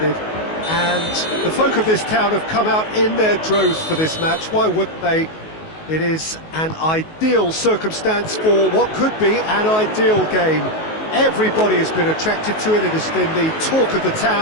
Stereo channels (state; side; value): late; right; 19 ms